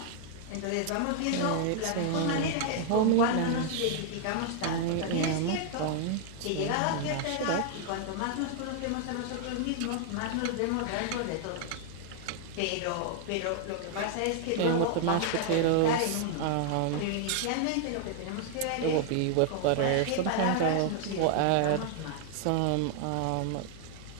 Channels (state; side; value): different; both; correlation 0.00